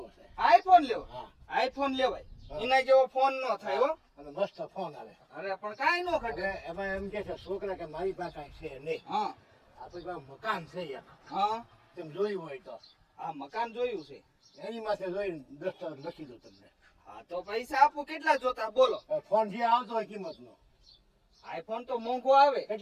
છે. આઈફોન લેવો? હા. આઈફોન લેવાય. એના જેવો ફોન નો થાય હો. અને મસ્ત ફોન આવે. અરે પણ કાઈ નો ઘટે. એમાં એમ કે છે છોકરા કે મારી પાસે કાંઈ છે નહીં. હા આપણી પાસે મકાન છે એક. હા તેમ જોયું હોય તો આ મકાન જોયું છે. એની માથે જોઈને દસ્તાવેજ લખી દઉં તમને. હા તો પૈસા આપું. કેટલા જોતા બોલો? ફોન જે આવતો હોય કિંમતનો આઈફોન તો મોંઘો આવે.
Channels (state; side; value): identical; both; correlation 1.00